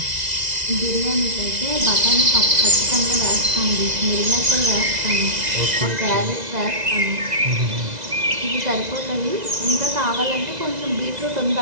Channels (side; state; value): left; late; 2.0 ms